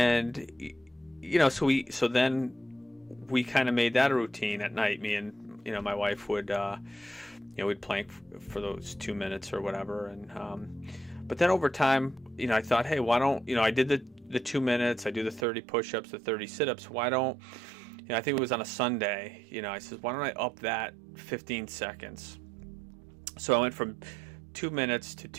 so then we kind of made that a routine at night. Me and my wife would we'd plank for those 2 minutes or whatever. And but then over time, I thought, hey, why don't I did the 2 minutes, I do the 30 push-ups, the 30 sit-ups. Why don't I think it was on a Sunday. I said, why don't I up that 15 seconds? So I went from 2 minutes to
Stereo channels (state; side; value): drops out; left; at 15.5 s